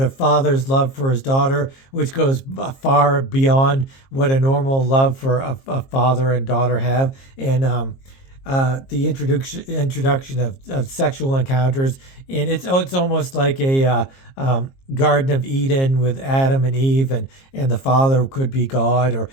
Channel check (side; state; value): right; late; 22 ms